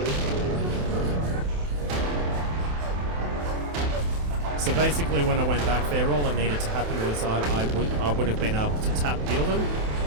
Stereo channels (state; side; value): late; left; 27 ms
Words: So basically when I went back there, all that needed to happen was I would have been able to tap heal them.